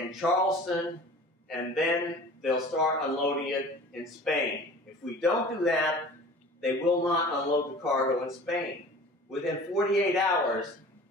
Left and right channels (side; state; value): both; normal; correlation 0.42